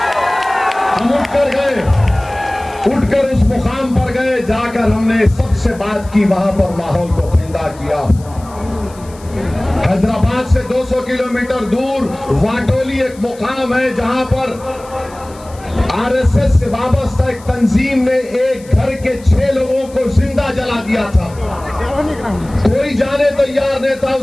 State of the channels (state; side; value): noise; left; hiss, 23 dB below the sound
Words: हम उठकर गए, उठकर उस मुकाम पर गए, जाकर हमने सबसे बात की, वहां पर माहौल को ठंडा किया। हैदराबाद से 200 किलोमीटर दूर वाटोली एक मुकाम है जहां पर आरएसएस से वाबस्ता एक तंजीम ने एक घर के 6 लोगों को जिंदा जला दिया था। कोई जाने तैयार नहीं था